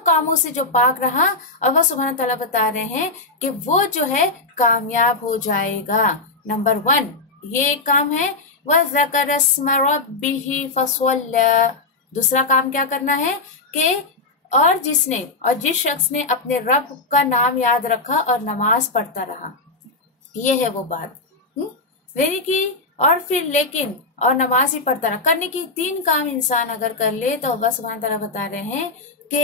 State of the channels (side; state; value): right; quieter; 3.5 dB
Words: कामों से जो पाक रहा। अल्लाह सुब्हानहू तआला बता रहे हैं कि वो जो है कामयाब हो जाएगा। नंबर 1 ये काम है। वज़कर अस्म रब्बिही फसल्ला। दूसरा काम क्या करना है कि और जिस शख्स ने अपने रब का नाम याद रखा और नमाज पढ़ता रहा, ये है वो बात। यानी कि और फिर लेकिन और नमाज ही पढ़ता रहा, करने की 3 काम इंसान अगर कर ले तो अल्लाह सुब्हानहू तआला बता रहे हैं